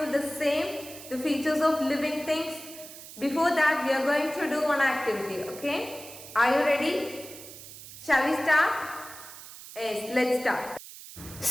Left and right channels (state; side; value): noise; right; hiss, 15 dB below the sound